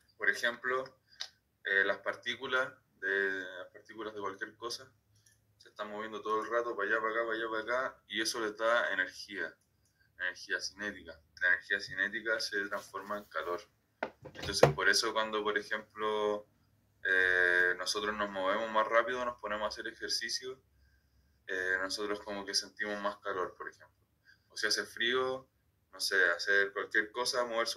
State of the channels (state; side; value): identical; both; correlation 1.00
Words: Por ejemplo, las partículas de cualquier cosa se están moviendo todo el rato para allá, para acá, para allá, para acá, y eso les da energía cinética. La energía cinética se transforma en calor. Entonces, por eso cuando, por ejemplo, nosotros nos movemos más rápido, nos ponemos a hacer ejercicio, nosotros como que sentimos más calor, por ejemplo. O si hace frío, no sé, hacer cualquier cosa, moverse